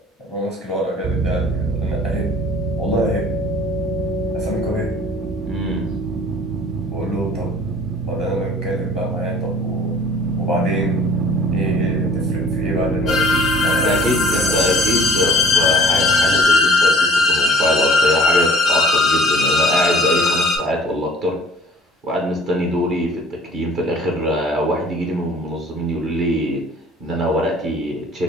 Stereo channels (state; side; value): normal; both; correlation 0.51